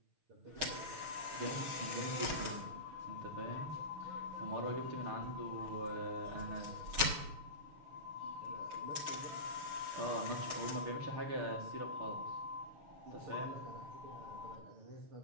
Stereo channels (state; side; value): late; left; 6.4 ms